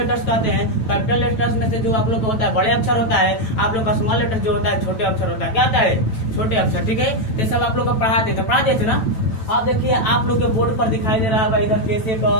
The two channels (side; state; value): right; late; 9.1 ms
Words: कहते हैं। कैपिटल लेटर्स में से जो आप लोग को होता है बड़े अक्षर होता है, आप लोग का स्मॉल लेटर्स जो होता है छोटे अक्षर होता है। क्या होता है? छोटे अक्षर। ठीक है, ये सब आप लोग को पढ़ा देते थे ना। अब देखिए आप लोग के बोर्ड पर दिखाई दे रहा है इधर कैसे का